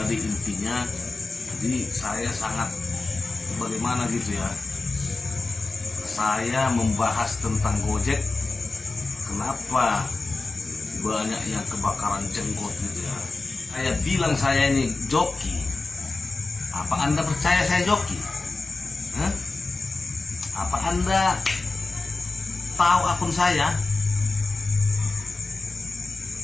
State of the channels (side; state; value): right; quieter; 3.5 dB